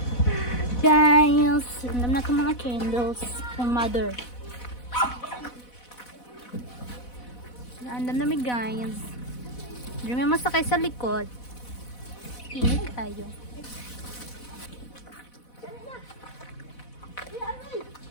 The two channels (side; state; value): right; late; 4.1 ms